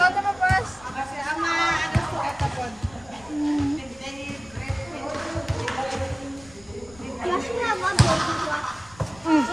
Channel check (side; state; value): left; noise; rumble, 23 dB below the sound